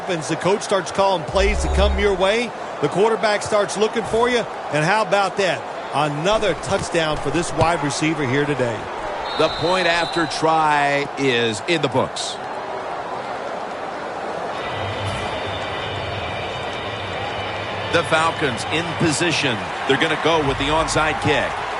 The coach starts calling plays to come your way. The quarterback starts looking for you. And how about that? Another touchdown for this wide receiver here today. The point after try is in the books. The Falcons in position. They're going to go with the onside kick.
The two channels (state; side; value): identical; both; correlation 1.00